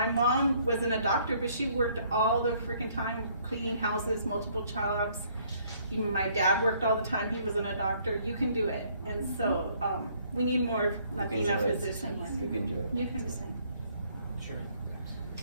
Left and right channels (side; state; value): both; inverted; correlation -0.64